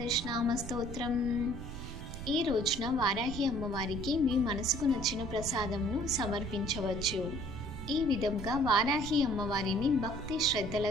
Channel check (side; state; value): right; noise; rumble, 9 dB below the sound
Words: నామ స్తోత్రం। ఈ రోజున వారాహి అమ్మవారికి మీ మనసుకు నచ్చిన ప్రసాదంను సమర్పించవచ్చు। ఈ విధంగా వారాహి అమ్మవారిని భక్తి